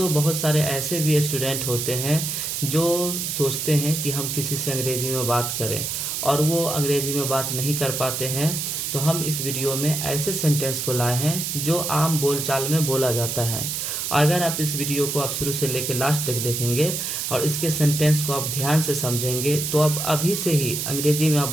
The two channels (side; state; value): right; noise; hiss, 2 dB below the sound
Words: बहुत सारे ऐसे भी स्टूडेंट होते हैं जो सोचते हैं कि हम किसी से अंग्रेजी में बात करें और वो अंग्रेजी में बात नहीं कर पाते हैं। तो हम इस वीडियो में ऐसे सेंटेंस को लाए हैं जो आम बोलचाल में बोला जाता है। अगर आप इस वीडियो को आप शुरू से लेकर लास्ट तक देखेंगे और इसके सेंटेंस को आप ध्यान से समझेंगे तो आप अभी से ही अंग्रेजी में आप